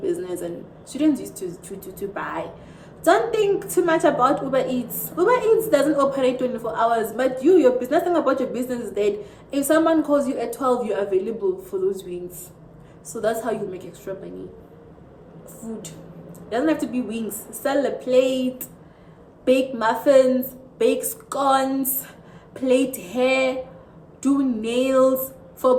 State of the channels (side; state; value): both; identical; correlation 1.00